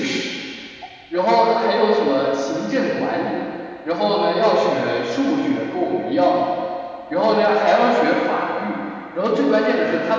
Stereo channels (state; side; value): identical; both; correlation 1.00